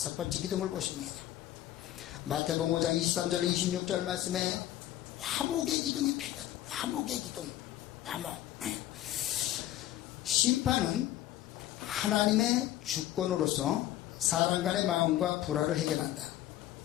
번째 기둥을 보십니다. 마태복음 5장 23절 26절 말씀에 화목의 기둥이 필요하다. 화목의 기둥. 화목. 심판은 하나님의 주권으로서 사람 간의 마음과 불화를 해결한다.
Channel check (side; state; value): right; quieter; 13.5 dB